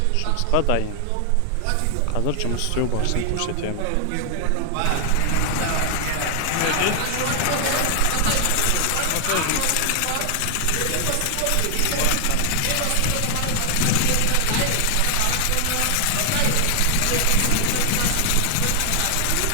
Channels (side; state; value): both; different; correlation 0.00